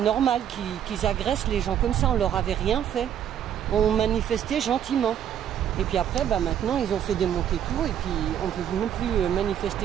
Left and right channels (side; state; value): left; quieter; 9.8 dB